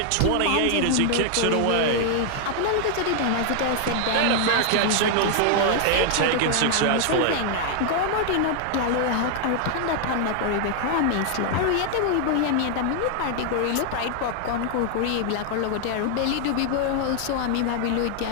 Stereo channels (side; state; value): both; different; correlation 0.00